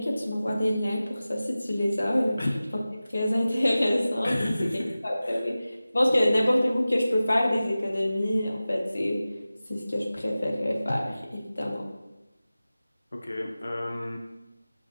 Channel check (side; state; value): both; inverted; correlation -0.96